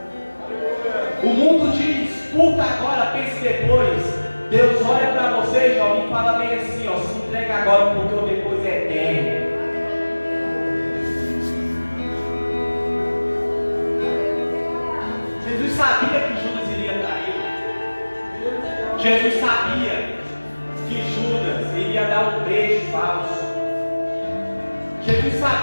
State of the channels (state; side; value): inverted; both; correlation -1.00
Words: O mundo diz: curta agora, pense depois. Deus olha para você, jovem, e fala bem assim: ó, se entrega agora, porque o depois é eterno. Jesus sabia que Judas iria dar um beijo falso. Jesus